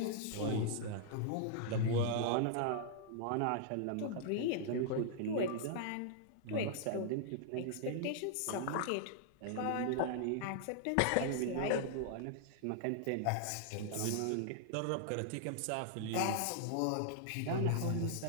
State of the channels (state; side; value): different; both; correlation -0.01